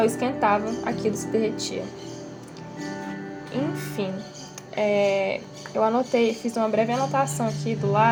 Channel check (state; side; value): identical; both; correlation 1.00